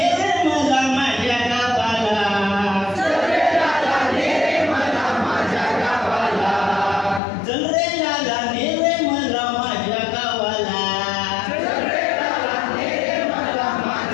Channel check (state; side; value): drops out; right; at 7.2 s